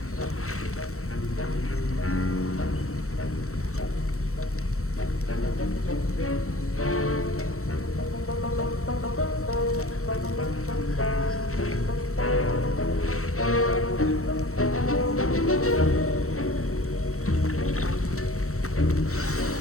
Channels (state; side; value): late; right; 0.64 ms